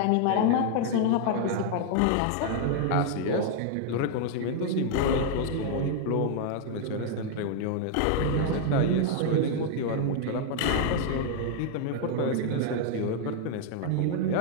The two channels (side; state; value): both; different; correlation 0.00